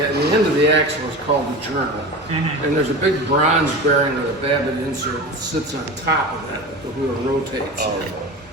end of the axle is called the journal. And there's a big bronze bearing with a Babbitt insert that sits on top of that the wheel rotates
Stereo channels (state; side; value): normal; both; correlation 0.30